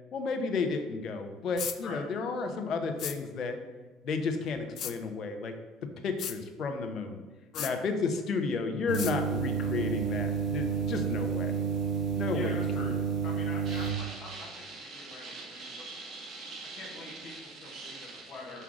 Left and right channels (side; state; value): both; normal; correlation 0.37